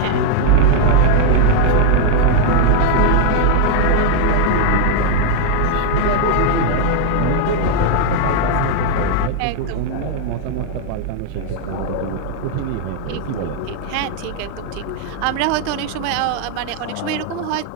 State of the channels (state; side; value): different; both; correlation 0.00